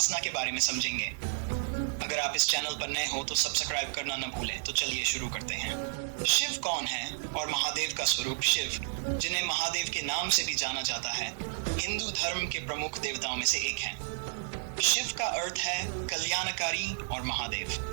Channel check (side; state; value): left; silent; digital silence